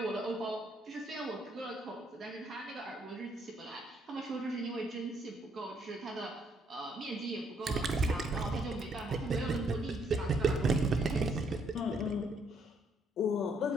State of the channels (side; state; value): both; normal; correlation 0.70